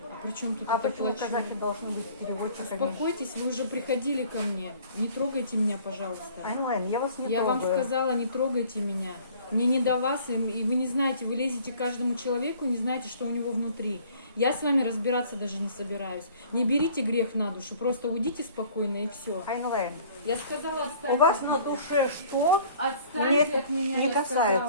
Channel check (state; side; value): inverted; both; correlation -0.52